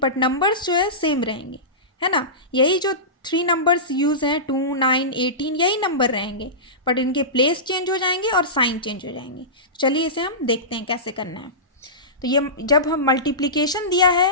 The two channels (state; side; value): normal; both; correlation -0.20